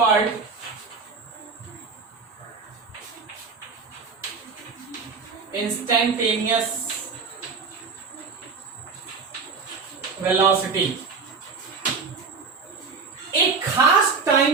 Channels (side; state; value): left; quieter; 4.9 dB